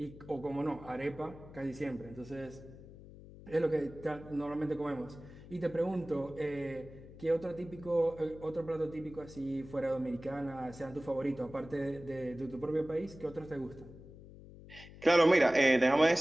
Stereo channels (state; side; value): noise; left; hum, 17 dB below the sound